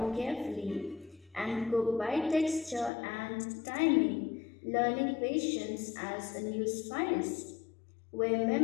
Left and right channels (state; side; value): drops out; right; at 2.9 s